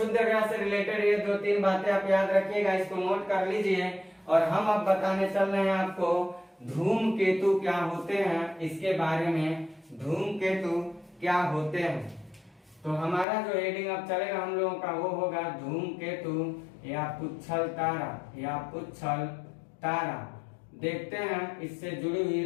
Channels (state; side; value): drops out; right; at 13.2 s